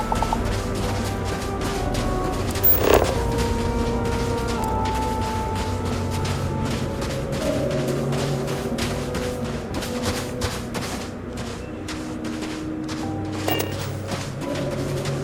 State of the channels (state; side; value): identical; both; correlation 1.00